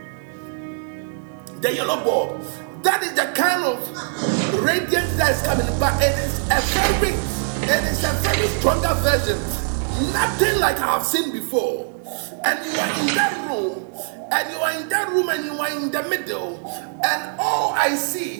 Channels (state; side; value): silent; left; 64 dB below the other